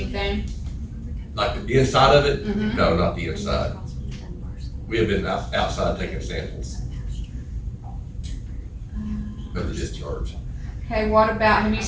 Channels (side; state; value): both; identical; correlation 1.00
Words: Like the inside of it? Mhm. No, not the inside. We have been outside taking samples of the discharge. Okay, what about, have you